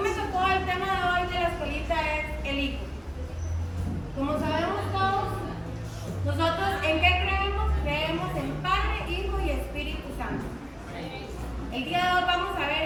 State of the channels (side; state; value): both; identical; correlation 1.00